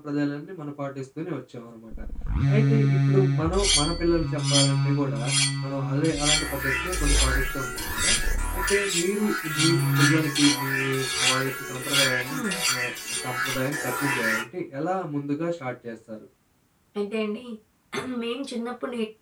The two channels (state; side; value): identical; both; correlation 1.00